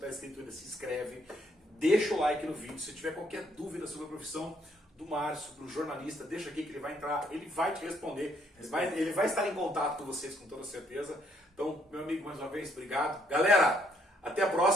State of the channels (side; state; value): both; normal; correlation 0.69